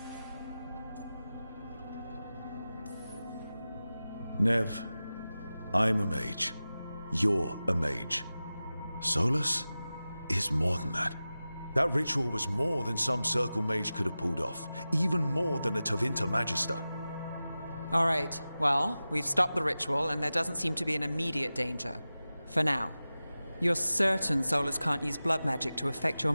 Nev, I'm a mage. You're a mage. Solus is more than that. That ritual was more than some circle mage could have pulled off. Even more than a Tevinter Magister. All right, well, we've stopped the ritual and there doesn't seem to be an immediate danger. For now. You're certain Solus can't use blood magic to affect your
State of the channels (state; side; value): inverted; both; correlation -0.95